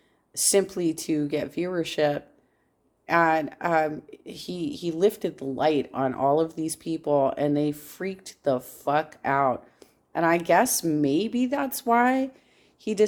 simply to get viewership. And he lifted the light on all of these people and they freaked the fuck out. And I guess maybe that's why he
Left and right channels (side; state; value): both; identical; correlation 1.00